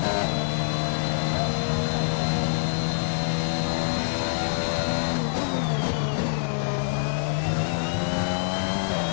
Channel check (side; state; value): right; silent; 61 dB below the other